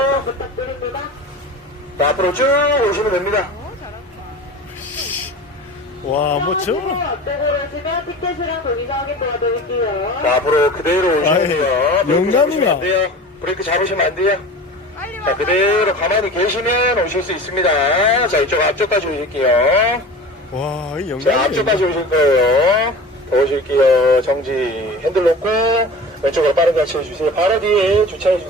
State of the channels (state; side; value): normal; both; correlation 0.36